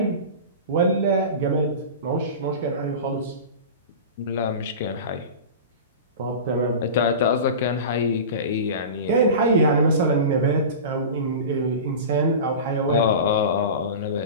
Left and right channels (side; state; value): both; inverted; correlation -0.31